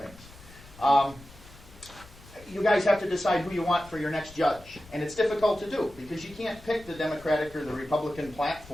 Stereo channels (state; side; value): noise; left; rumble, 21 dB below the sound